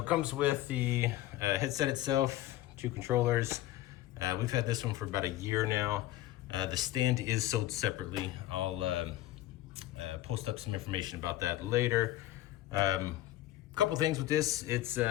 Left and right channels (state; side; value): quieter; right; 14.8 dB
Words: comes with the headset itself, 2 controllers. We've had this one for about a year now. The stand is sold separately. I'll post up some information about that later. Couple things with this. It's